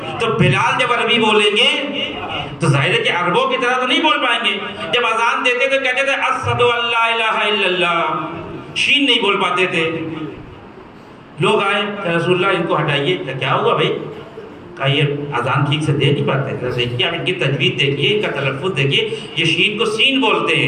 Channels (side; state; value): both; identical; correlation 1.00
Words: تو بلال جب عربی بولیں گے تو ظاہر ہے کہ عربوں کی طرح تو نہیں بول پائیں گے. جب اذان دیتے تو کہتے تھے اشہد ان لا الہ الا اللہ، شین نہیں بول پاتے تھے. لوگ آئے کہ رسول اللہ ان کو ہٹائیے. کیا ہوا بھائی؟ کہا یہ اذان ٹھیک سے دے نہیں پاتے. دیکھیے آپ ان کی تجوید دیکھیے، ان کا تلفظ دیکھیے، یہ شین کو سین بولتے